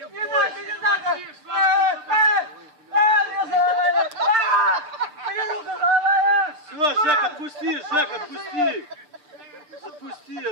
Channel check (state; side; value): late; left; 6.7 ms